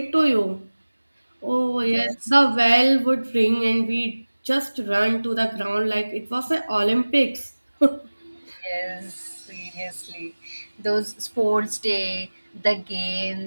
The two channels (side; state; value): both; inverted; correlation -1.00